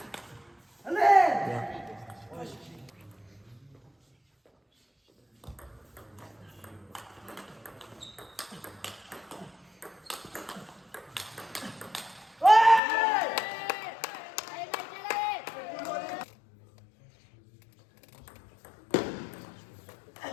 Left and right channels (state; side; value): drops out; right; at 12.8 s